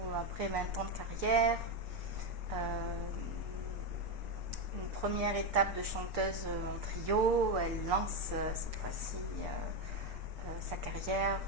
après 20 ans de carrière, une première étape de chanteuse en trio, elle lance cette fois-ci sa carrière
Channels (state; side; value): late; left; 6.6 ms